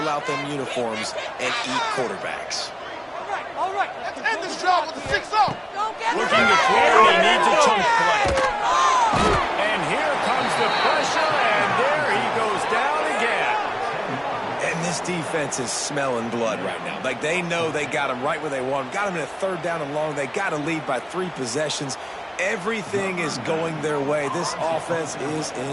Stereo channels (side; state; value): both; identical; correlation 1.00